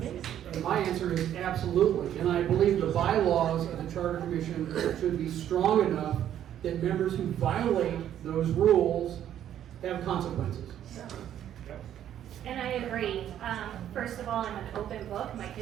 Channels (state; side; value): quieter; left; 10.8 dB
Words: My answer is absolutely, and I believe the bylaws of the Charter Commission should be strong enough that members who violate those rules have consequences. And I agree. First of all, I'm an open book. My